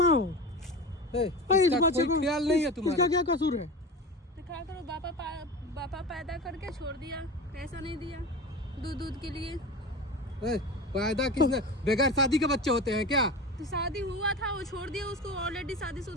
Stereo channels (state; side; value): normal; both; correlation 0.29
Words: हो? इस बच्चे को ख्याल नहीं है तुम्हारा? इसका क्या कसूर है? तो क्या करो, बापा पैदा करके छोड़ दिया, पैसा नहीं दिया दूध के लिए। पैदा किसने? बगैर शादी के बच्चे होते हैं क्या? तो शादी हुआ था, वो छोड़ दिया, उसको ऑलरेडी